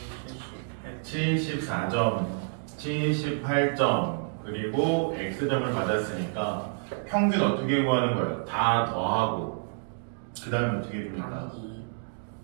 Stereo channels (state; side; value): silent; left; digital silence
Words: 74점, 78점, 그리고 X점을 받았으니까 평균 어떻게 구하는 거예요? 다 더하고 그 다음에 어떻게 해줍니까? 나누기